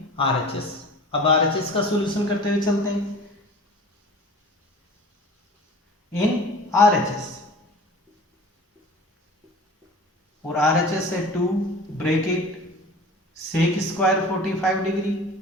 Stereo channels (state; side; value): normal; both; correlation 0.41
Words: आरएचएस। अब आरएचएस का सॉल्यूशन करते हुए चलते हैं इन आरएचएस, और आरएचएस है 2 bracket sec square 45 degree